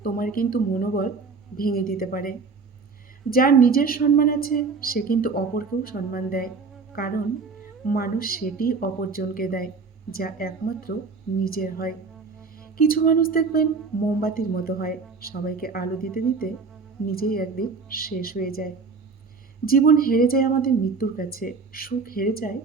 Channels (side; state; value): left; quieter; 4.6 dB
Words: তোমার কিন্তু মনোবল ভেঙে দিতে পারে। যার নিজের সম্মান আছে সে কিন্তু অপরকেও সম্মান দেয়। কারণ মানুষ সেটিই অপরজনকে দেয় যা একমাত্র নিজের হয়। কিছু মানুষ দেখবেন মোমবাতির মতো হয়, সবাইকে আলো দিতে দিতে নিজেই একদিন শেষ হয়ে যায়। জীবন হেরে যায় আমাদের মৃত্যুর কাছে, সুখ হেরে যায়